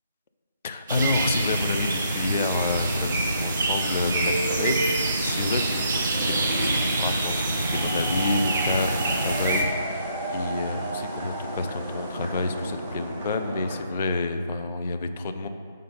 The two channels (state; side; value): inverted; both; correlation -0.69